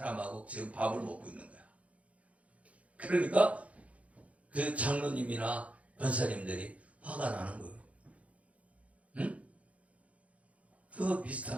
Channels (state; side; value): late; left; 0.065 ms